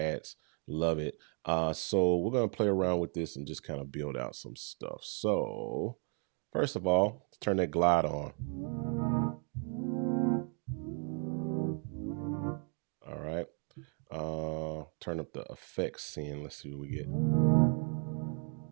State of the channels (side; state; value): left; quieter; 39.9 dB